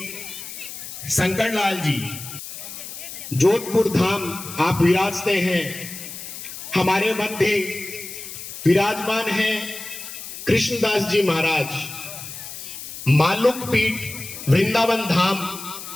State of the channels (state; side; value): noise; left; hiss, 11 dB below the sound